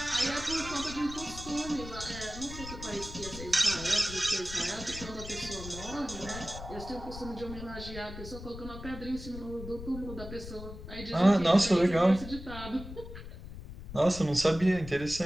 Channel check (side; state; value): left; noise; rumble, 11 dB below the sound